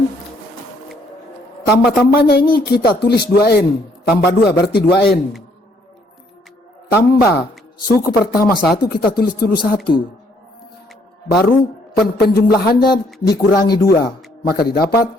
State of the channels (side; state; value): both; normal; correlation 0.67